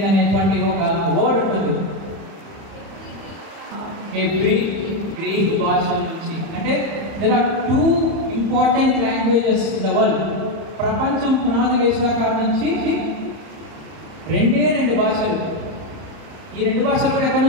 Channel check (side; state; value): left; late; 30 ms